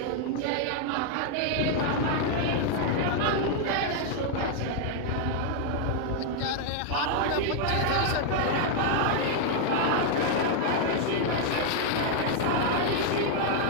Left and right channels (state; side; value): different; both; correlation 0.00